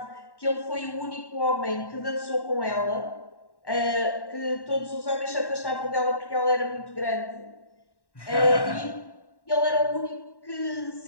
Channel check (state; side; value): late; right; 1.1 ms